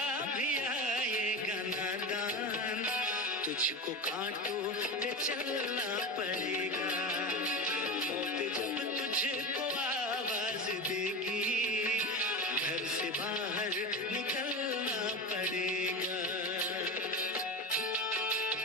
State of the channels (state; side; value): normal; both; correlation 0.24